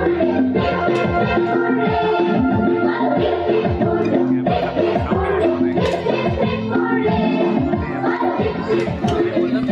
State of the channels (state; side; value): identical; both; correlation 1.00